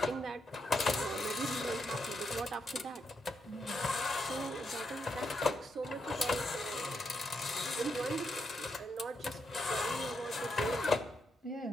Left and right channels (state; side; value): normal; both; correlation 0.80